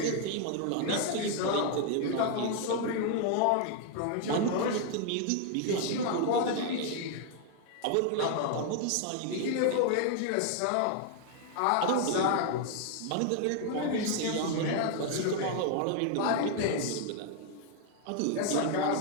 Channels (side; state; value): both; different; correlation 0.00